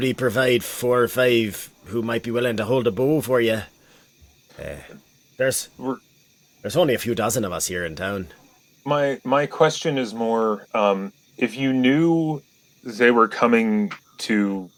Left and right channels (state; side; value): identical; both; correlation 1.00